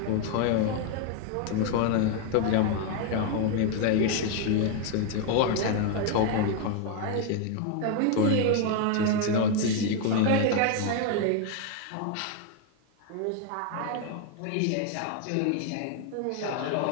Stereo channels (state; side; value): different; both; correlation 0.01